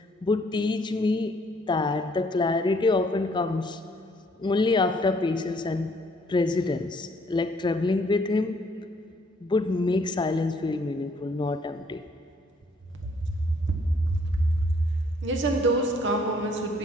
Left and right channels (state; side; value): normal; both; correlation 0.64